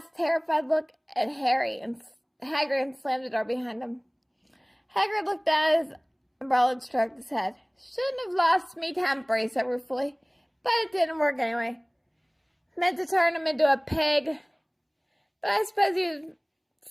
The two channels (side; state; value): both; identical; correlation 1.00